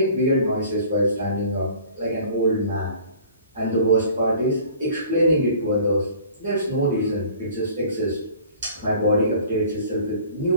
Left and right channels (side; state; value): both; inverted; correlation -0.48